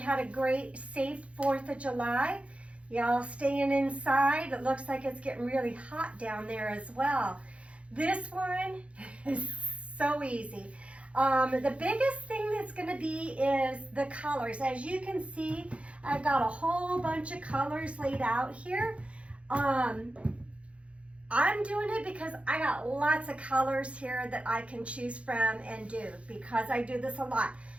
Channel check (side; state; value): left; late; 0.062 ms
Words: a great, safe 4th of July. Y'all staying inside. It looks like it's getting really hot down there as well. This one is so easy. The biggest thing that's going to be is the colors. As you can see, I've got a whole bunch of colors laid out here. I'm doing it because I got lots of colors here that I can choose from and do, because I do this a lot.